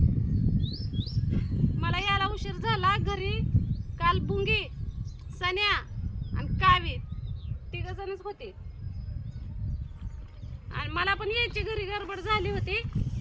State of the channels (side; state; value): both; identical; correlation 1.00